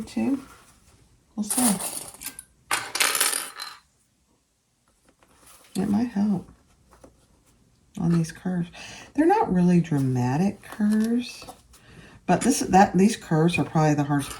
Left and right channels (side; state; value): both; identical; correlation 1.00